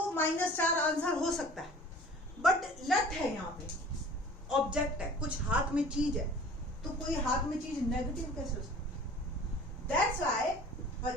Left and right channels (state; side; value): normal; both; correlation 0.46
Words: -4 आंसर हो सकता है, बट लट है यहाँ पे, ऑब्जेक्ट है, कुछ हाथ में चीज है, तो कोई हाथ में चीज नेगेटिव कैसे हो सकती है? That's why